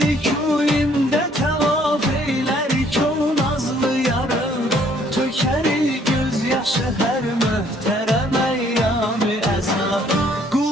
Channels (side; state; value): both; normal; correlation 0.63